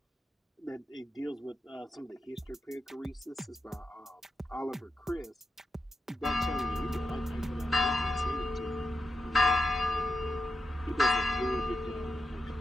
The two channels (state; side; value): normal; both; correlation 0.87